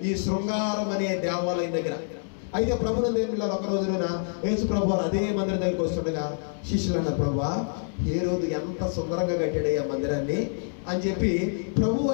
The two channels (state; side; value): silent; right; digital silence